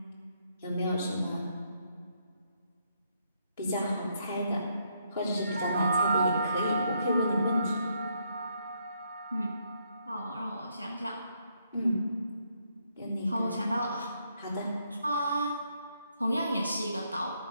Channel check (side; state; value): both; inverted; correlation -0.75